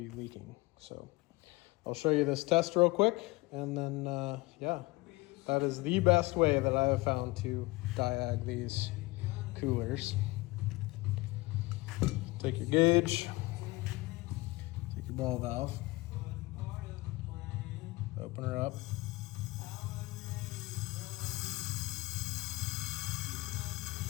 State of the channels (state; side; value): quieter; right; 21.9 dB